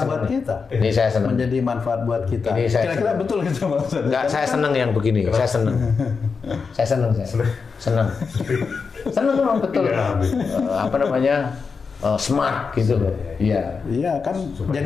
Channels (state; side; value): quieter; right; 5.2 dB